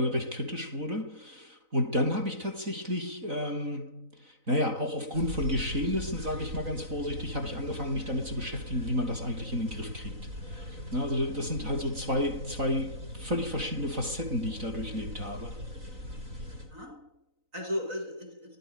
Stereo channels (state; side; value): late; left; 3.9 ms